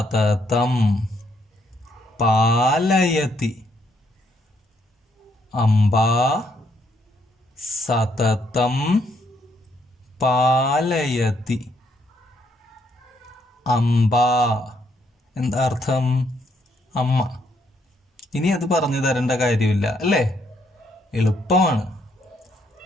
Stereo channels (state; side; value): normal; both; correlation 0.73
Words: പാലയതി. അംബ സതതം പാലയതി. അംബ എന്താ അർത്ഥം? അമ്മ. ഇനി അത് പറഞ്ഞു തരേണ്ട കാര്യമില്ല അല്ലേ? എളുപ്പമാണ്.